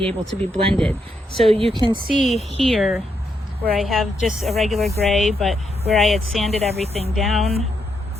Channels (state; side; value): normal; both; correlation 0.80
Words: able to be blended. So you can see here where I have just a regular gray, but where I had sanded everything down,